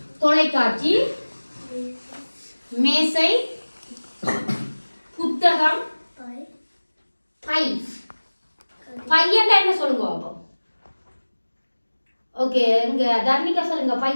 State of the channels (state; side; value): inverted; both; correlation -1.00